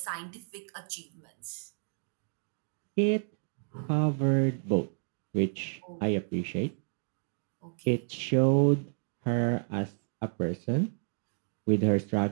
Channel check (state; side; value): silent; left; 57 dB below the other